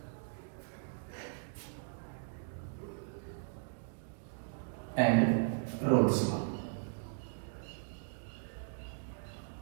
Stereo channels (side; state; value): left; silent; digital silence